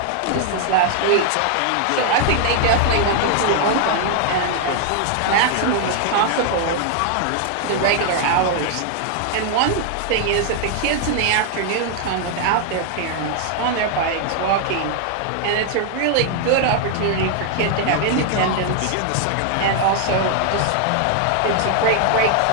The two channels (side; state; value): both; different; correlation 0.00